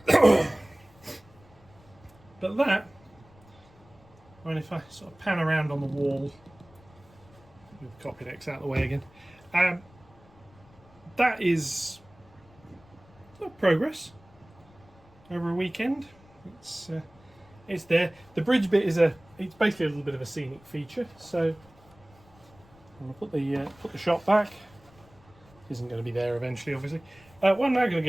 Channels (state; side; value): noise; left; rumble, 26 dB below the sound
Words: But that, I mean, if I sort of pan around on the wall, with the copy decks out of the way again, that is progress over a weekend. It's there. The bridge bit is it's basically a little bit of a scenic feature. So I'm going to put the shot back. Isn't going to be there eventually, obviously. What I'm now going to